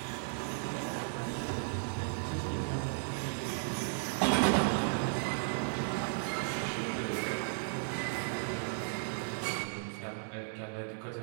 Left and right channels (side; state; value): left; silent; digital silence